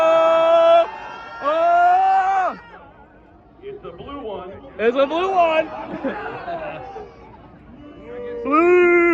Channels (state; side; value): identical; both; correlation 1.00